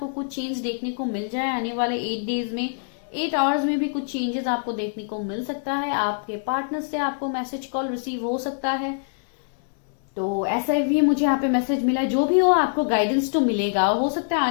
कुछ चेंज देखने को मिल जाए आने वाले 8 डेज में। 8 आवर्स में भी कुछ चेंजेस आपको देखने को मिल सकता है। आपके पार्टनर से आपको मैसेज कॉल रिसीव हो सकता है। तो ऐसा भी मुझे यहाँ पे मैसेज मिला है। जो भी हो आपको गाइडेंस तो मिलेगा। हो सकता है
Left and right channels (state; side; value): silent; right; digital silence